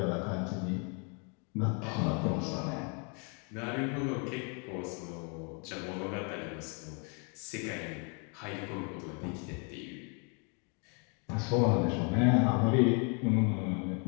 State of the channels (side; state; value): right; quieter; 36.2 dB